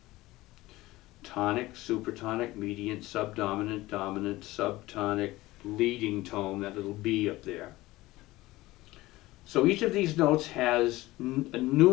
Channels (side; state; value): right; quieter; 18.5 dB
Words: Tonic, supertonic, mediant, subdominant, dominant, subtonic, leading tone, that little B up there. So each of these notes has